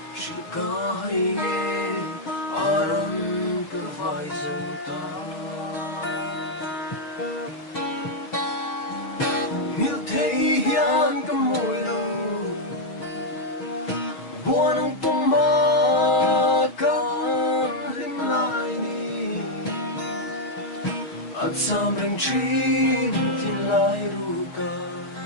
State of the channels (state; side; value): late; right; 6.2 ms